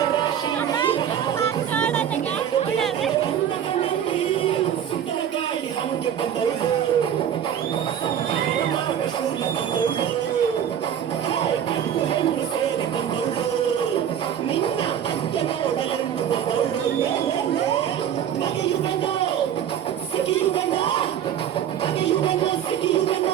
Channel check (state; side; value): quieter; left; 9.5 dB